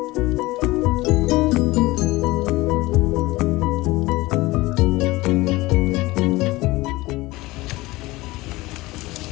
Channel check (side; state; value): right; quieter; 20.2 dB